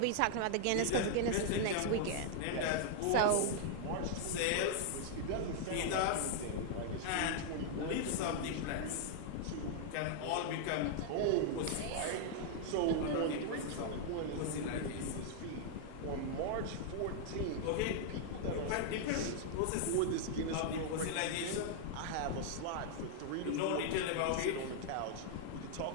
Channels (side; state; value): both; different; correlation -0.01